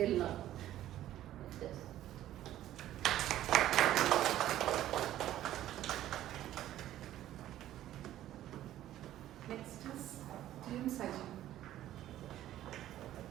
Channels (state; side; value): quieter; left; 13.1 dB